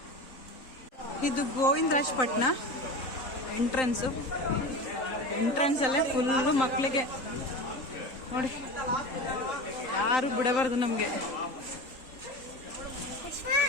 ಇದು ಗೋವಿಂದರಾಜ್ ಪಟ್ನ ಎಂಟ್ರೆನ್ಸು. ಎಂಟ್ರೆನ್ಸಲ್ಲೇ ಫುಲ್ಲು ಮಕ್ಕಳಿಗೆ ನೋಡಿ, ಯಾರು ಬಿಡಬಾರ್ದು ನಮಗೆ.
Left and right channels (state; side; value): late; right; 3.9 ms